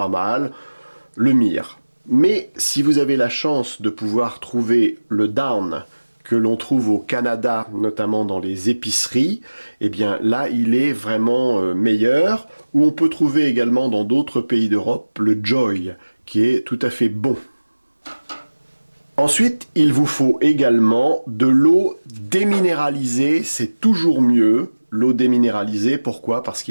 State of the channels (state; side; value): inverted; both; correlation -1.00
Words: mal. Le Mire. Mais si vous avez la chance de pouvoir trouver le Down que l'on trouve au Canada, notamment dans les épiceries, eh bien là, il est vraiment meilleur. Ou on peut trouver également dans d'autres pays d'Europe le Joy, qui est tout à fait bon. Ensuite, il vous faut également de l'eau déminéralisée, c'est toujours mieux. L'eau déminéralisée, pourquoi? Parce